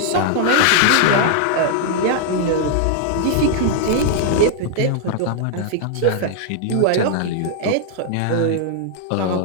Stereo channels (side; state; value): both; different; correlation -0.01